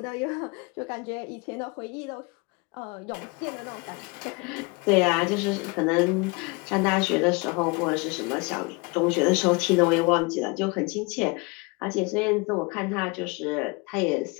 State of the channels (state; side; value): quieter; right; 27.9 dB